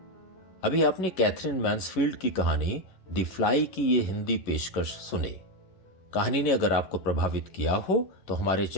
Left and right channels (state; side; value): late; right; 11 ms